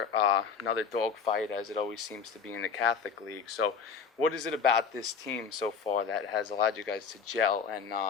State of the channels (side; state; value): right; quieter; 6.1 dB